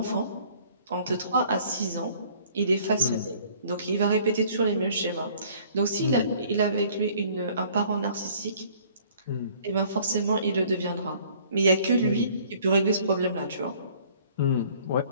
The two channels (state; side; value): inverted; both; correlation -0.56